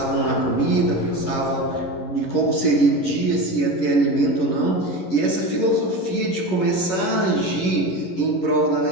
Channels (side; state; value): right; late; 11 ms